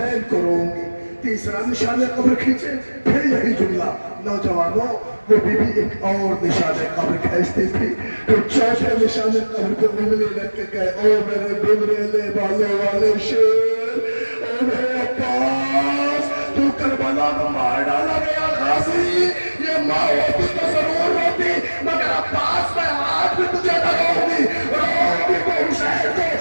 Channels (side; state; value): both; inverted; correlation -1.00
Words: کو روں گی۔ تیسرا نشان قبر کھینچے، پھر یہی جملہ۔ نوجوانوں وہ بی بی ایک اور نشان قبر کھینچتی تھی، تو چوتھے نشان قبر پہ انگلی رکھ کے کہے او میرے بمریلے بالوں والے شیر، او میرے عباس تو کربلا میں مار ڈالا گیا غازی، یہ ماں ہوتی تو ضرور ہوتی، مگر عباس میں ہاتھ بھی تجھے نہ روگی کو حسین کو